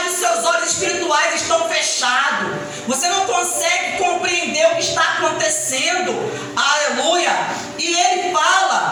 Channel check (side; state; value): both; identical; correlation 1.00